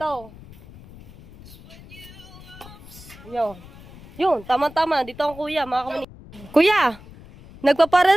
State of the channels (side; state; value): left; noise; rumble, 20 dB below the sound